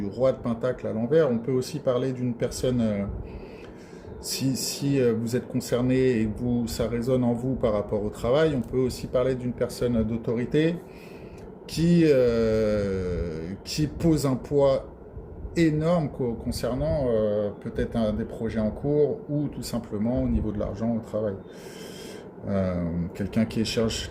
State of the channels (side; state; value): both; identical; correlation 1.00